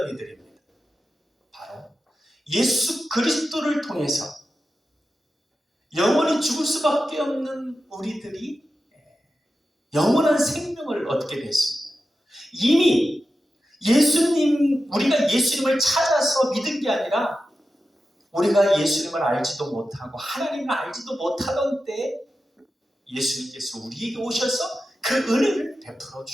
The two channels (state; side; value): normal; both; correlation 0.92